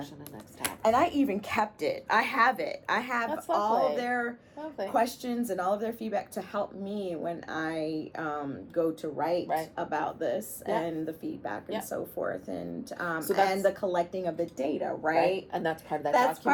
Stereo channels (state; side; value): identical; both; correlation 1.00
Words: and next steps? And I even kept it. I have it. I have all of their questions and all of their feedback to help me when I go to write about this and the feedback and so forth. And and the collecting of the data, right? And that's part of that. That's